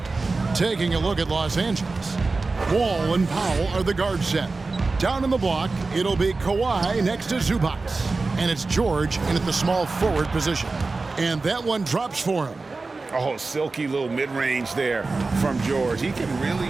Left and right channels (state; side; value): quieter; left; 3.7 dB